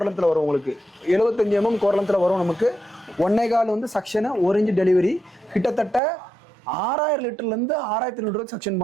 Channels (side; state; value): left; drops out; at 6.0 s